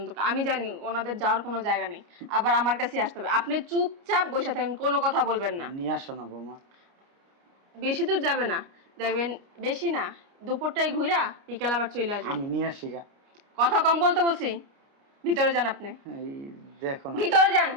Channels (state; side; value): late; left; 29 ms